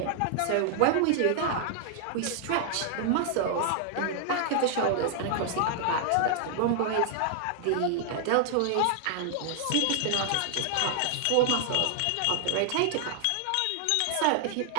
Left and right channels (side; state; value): both; different; correlation 0.00